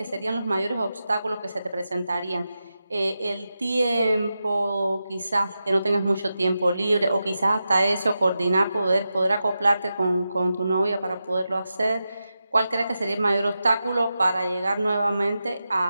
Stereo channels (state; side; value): inverted; both; correlation -0.90